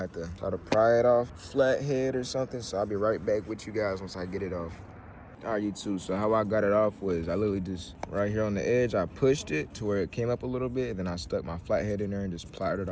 to try to pry it off, flathead or something, so I'll be right back with you guys once I get it off. All right, YouTube, so how I got it off was I literally just, right here on the edge, I pushed it to where it came up a little bit, and then I stuck my flathead in there and just plied it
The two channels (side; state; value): both; identical; correlation 1.00